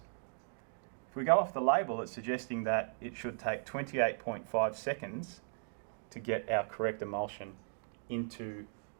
If we go off the label, it's suggesting that it should take 28.5 seconds to get our correct emulsion into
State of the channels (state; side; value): silent; left; digital silence